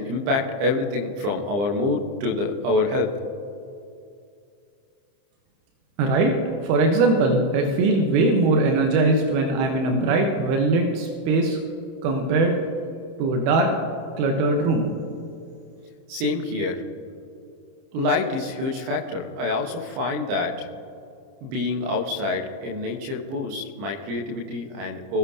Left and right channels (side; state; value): left; late; 30 ms